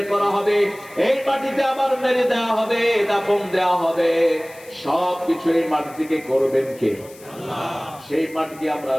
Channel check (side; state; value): left; noise; hiss, 22 dB below the sound